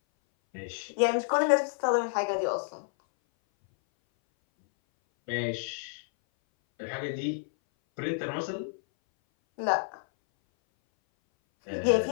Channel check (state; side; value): silent; right; 58 dB below the other